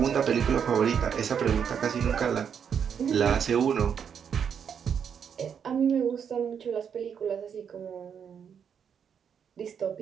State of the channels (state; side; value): quieter; left; 7.5 dB